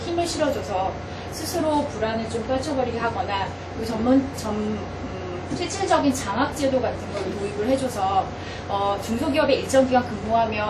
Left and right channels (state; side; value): identical; both; correlation 1.00